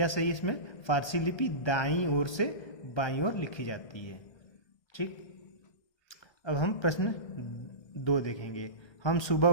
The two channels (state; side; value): late; right; 1.3 ms